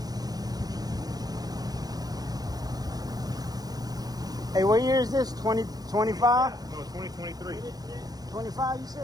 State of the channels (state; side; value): late; left; 0.19 ms